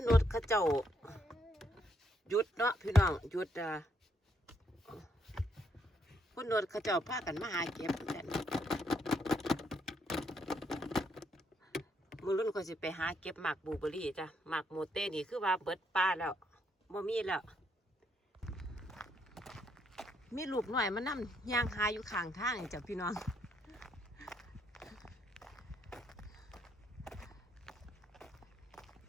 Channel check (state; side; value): normal; both; correlation 0.75